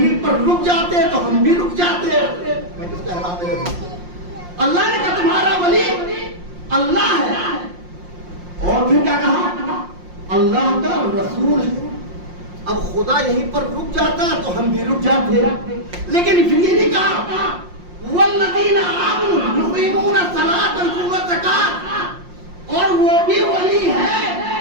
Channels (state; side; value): late; left; 5.6 ms